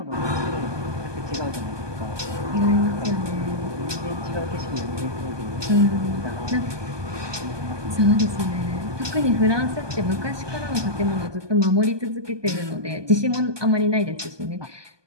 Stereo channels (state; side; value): late; left; 1.2 ms